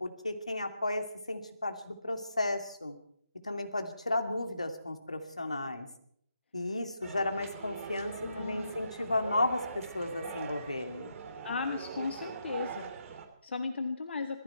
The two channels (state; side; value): inverted; both; correlation -0.81